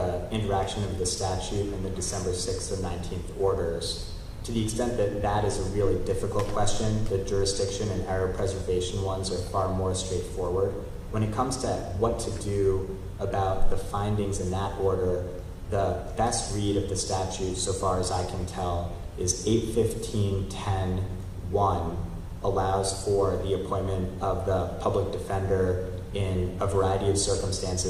interaction of the statute and the December 6th and 19th orders. To the extent that that is a really difficult question, the jurisdiction and error preservation ones are far more straightforward. When it comes to what to do about the findings in that order, the best read of the statute, so far as I can tell, is 815.10.1 allows for the appointment of the public defender in a variety of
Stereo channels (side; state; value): both; identical; correlation 1.00